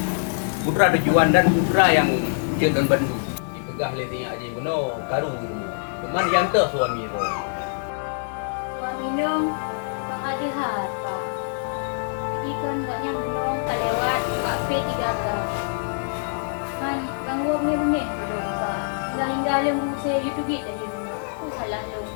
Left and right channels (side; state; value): right; silent; digital silence